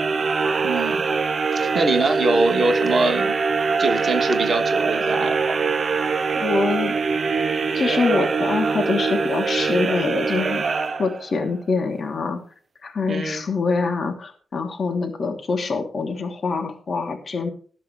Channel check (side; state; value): both; normal; correlation 0.85